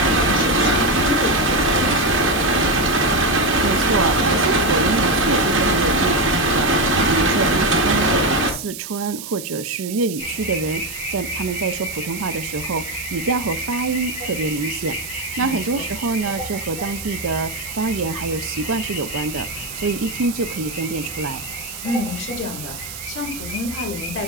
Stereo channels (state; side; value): noise; right; hiss, 10 dB below the sound